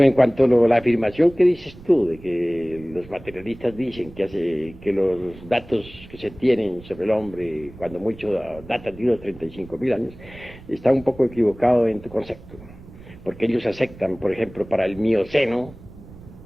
en cuanto a la afirmación que dices tú, de que los materialistas dicen que los datos que se tienen sobre el hombre, cuando mucho datan de unos 35.000 años, está un poco equivocado en tu concepto. Porque ellos aceptan, por ejemplo, para el Mioceno,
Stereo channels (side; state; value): right; noise; rumble, 19 dB below the sound